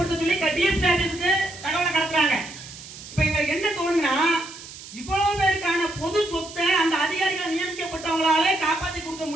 சொல்லி DSP ஆபீஸ்க்கு தகவலை கடத்துறாங்க. இப்ப இவங்களுக்கு என்ன தோணுன்னா, இவ்வளவு பேருக்கான பொது சொத்தை அந்த அதிகாரிகள் நியமிக்கப்பட்டவங்களாலே காப்பாற்றி கொடுக்க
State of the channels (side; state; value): right; noise; hiss, 15 dB below the sound